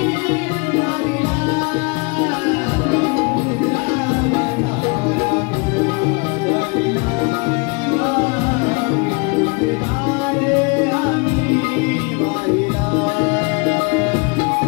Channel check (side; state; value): right; quieter; 30.5 dB